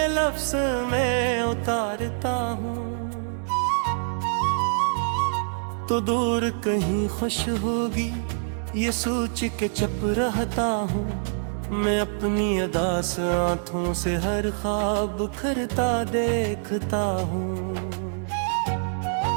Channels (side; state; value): left; silent; digital silence